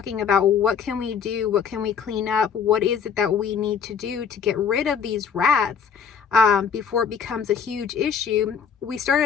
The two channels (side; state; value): right; quieter; 6.9 dB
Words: about what can we do, what can we clean up, what is it that we need to do to get rid of these rats before it becomes a huge issue, we